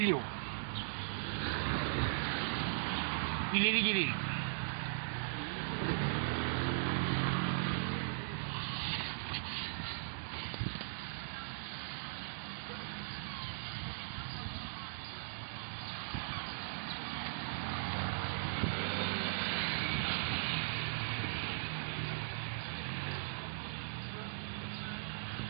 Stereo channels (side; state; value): left; silent; digital silence